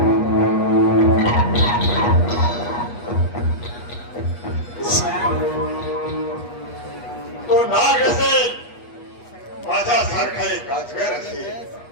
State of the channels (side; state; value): right; late; 8.3 ms